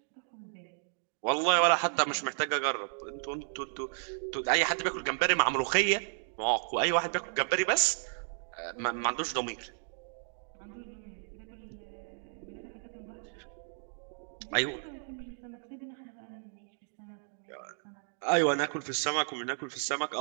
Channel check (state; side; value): silent; left; 56 dB below the other